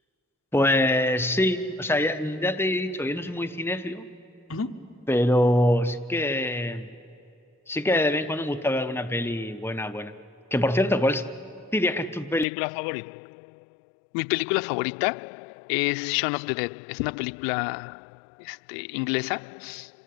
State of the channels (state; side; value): drops out; right; at 12.5 s